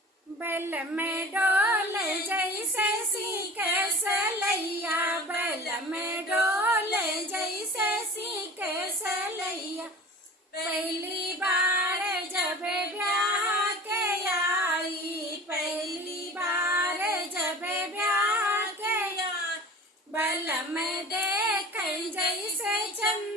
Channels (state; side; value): normal; both; correlation 0.39